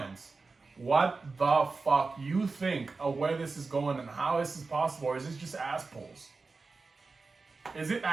what the fuck you think of where this is going and how this is possible, or is this just ass pulls? Is it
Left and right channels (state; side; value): quieter; left; 4.1 dB